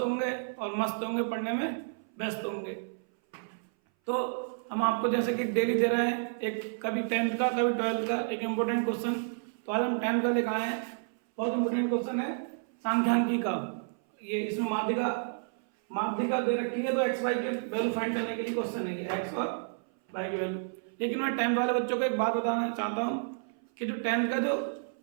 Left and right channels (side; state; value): left; silent; 57 dB below the other